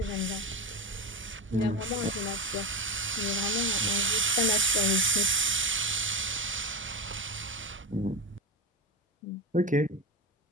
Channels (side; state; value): both; normal; correlation 0.17